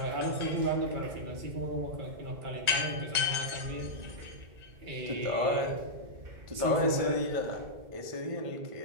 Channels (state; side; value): late; left; 1.4 ms